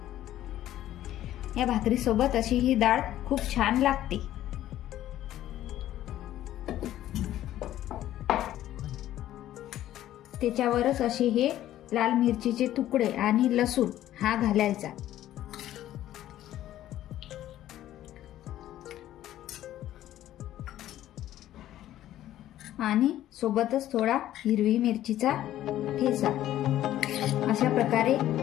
या भाकरी सोबत अशी ही डाळ खूप छान लागते। त्याच्यावरच असे हे लाल मिरचीचे तुकडे आणि लसूण हा घालायचा आणि सोबतच थोडा हिरवी मिरचीचा ठेचा। अशा प्रकारे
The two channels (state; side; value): quieter; right; 13.1 dB